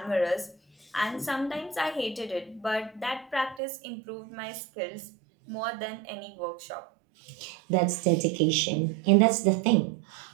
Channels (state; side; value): drops out; left; at 3.6 s